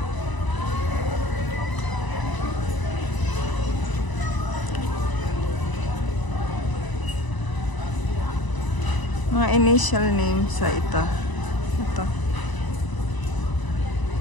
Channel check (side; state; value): right; late; 1.0 ms